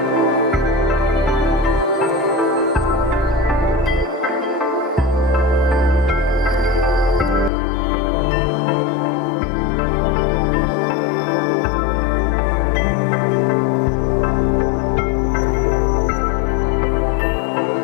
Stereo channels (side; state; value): right; drops out; at 7.5 s